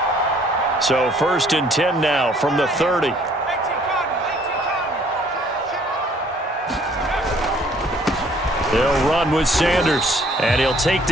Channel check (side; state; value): both; normal; correlation 0.60